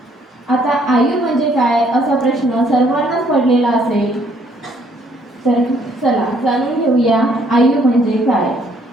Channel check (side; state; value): both; normal; correlation 0.66